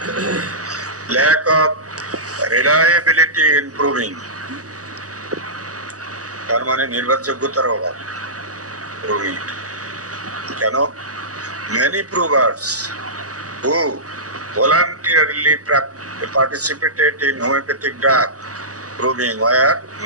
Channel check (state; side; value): late; left; 0.66 ms